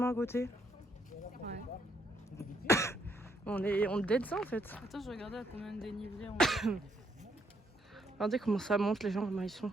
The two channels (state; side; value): normal; both; correlation 0.73